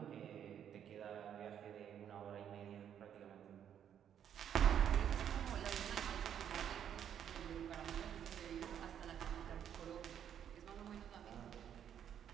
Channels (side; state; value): left; quieter; 9.2 dB